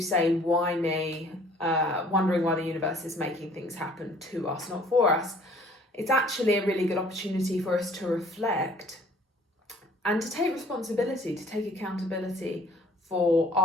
say, why me, wondering why the universe is making things happen to us, not for us. It's actually a really good opportunity for us to reflect and to take responsibility, to take accountability for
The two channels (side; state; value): both; normal; correlation 0.55